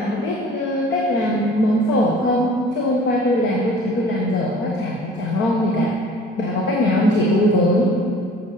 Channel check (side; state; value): both; normal; correlation 0.47